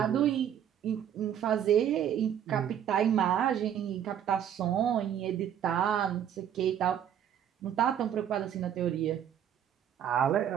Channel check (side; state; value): left; quieter; 9.6 dB